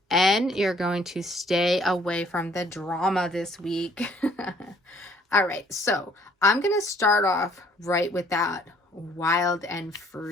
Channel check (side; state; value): both; normal; correlation 0.61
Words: And you're going to stay away from the drama this week. All right, so I'm going to start off right with that wild and